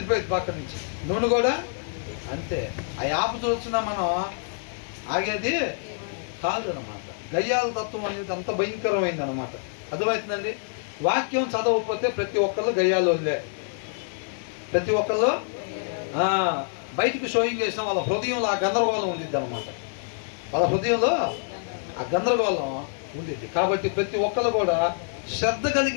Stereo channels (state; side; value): silent; right; digital silence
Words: పక్క నుంచి. నూనె కూడా అంతే. ఆ ఆపుతూ వచ్చినా మనం ఆగేది కాదు అనమాట. గయ్యాల తత్వం అనేది అంత భయంకరమైంది అనమాట. అర్థమవుతుందండి? వాక్యం చదవకపోతే ప్రతి ఒక్కళ్ళు గయ్యాలు వదిలే. ప్రతి ఒక్కళ్ళు బయటికి షోయింగ్ చేసిన వాళ్ళ హృదయంలో ఆ గందరగోళం ఉండిద్ది అనమాట. వాళ్ళ హృదయంలో ఆ గందరగోళం ఉండిద్ది. కాబట్టి ప్రతి ఒక్కళ్ళు కూడా శ్రద్ధ